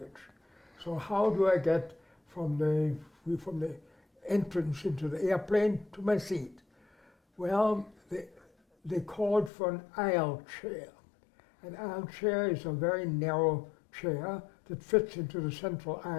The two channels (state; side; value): drops out; right; at 9.5 s